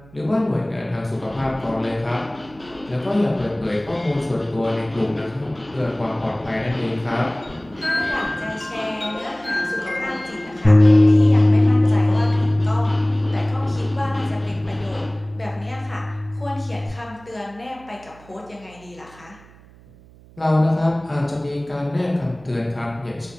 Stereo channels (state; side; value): noise; right; hum, 24 dB below the sound